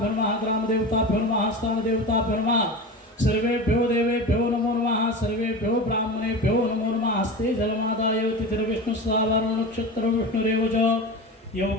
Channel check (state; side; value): normal; both; correlation 0.28